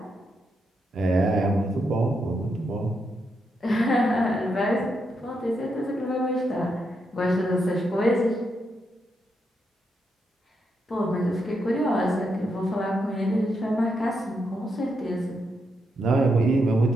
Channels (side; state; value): both; normal; correlation 0.82